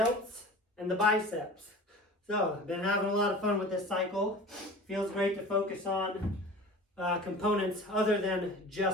and the biceps. So, I've been having a lot of fun with this cycle. Feels great to focus on components other than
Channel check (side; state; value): both; normal; correlation 0.39